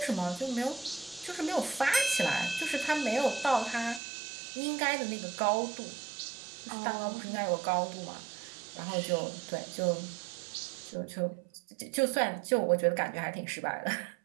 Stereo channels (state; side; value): drops out; left; at 4.0 s